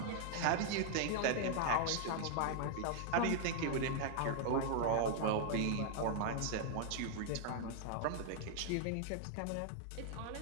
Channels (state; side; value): different; both; correlation 0.00